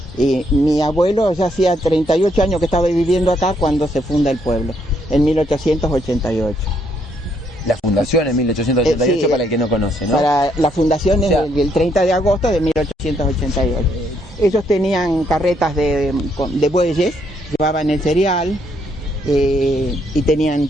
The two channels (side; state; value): both; normal; correlation 0.73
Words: Y mi abuelo ya hacía 38 años que estaba viviendo acá cuando se funda el pueblo, en 1888. La fundación en 1888, para el que no conoce, ¿no? Para la fundación el 30 de agosto de 1888. Ellos tenían carretas de bueyes, llevaban el cereal y tenían